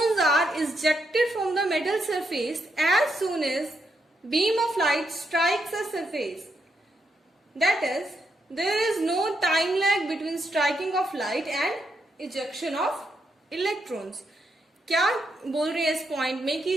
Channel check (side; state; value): both; normal; correlation 0.80